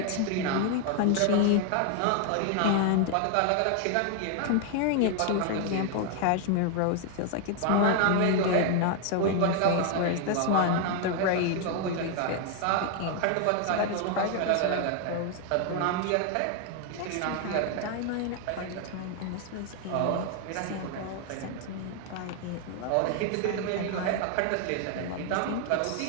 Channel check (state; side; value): different; both; correlation 0.00